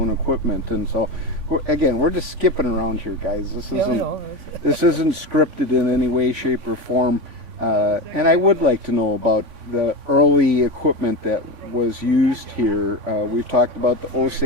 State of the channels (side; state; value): left; late; 3.5 ms